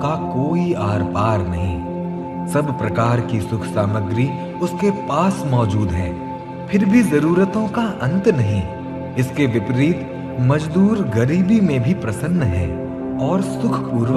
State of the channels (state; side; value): identical; both; correlation 1.00